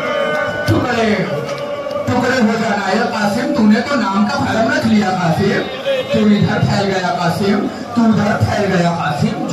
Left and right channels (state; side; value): identical; both; correlation 1.00